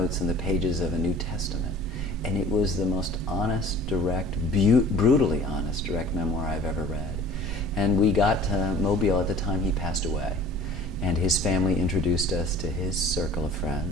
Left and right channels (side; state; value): both; normal; correlation 0.46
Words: in the pages of a New Testament. And it was the most honest, direct, brutally honest, direct memoir I've ever read. And we got to Mobile at the time he passed away. And his family introduced us to his circle of